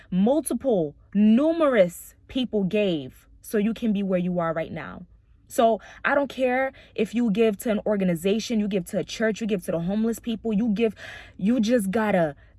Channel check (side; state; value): both; identical; correlation 1.00